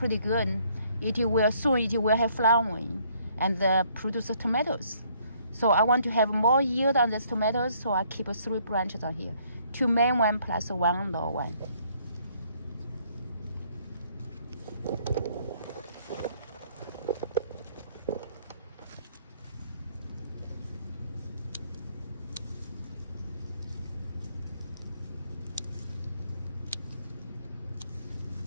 good. It will have flowering and produce tomatoes. So I want to have more yield on these tomatoes, so I keep 3 branches on here. 2 main one plus 1 low one.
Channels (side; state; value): both; inverted; correlation -0.65